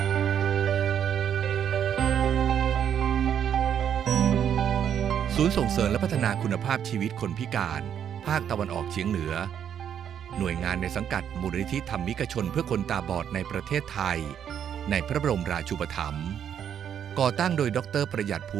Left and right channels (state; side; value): quieter; left; 8.9 dB